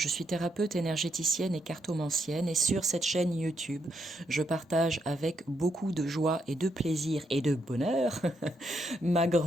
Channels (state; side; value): normal; both; correlation 0.78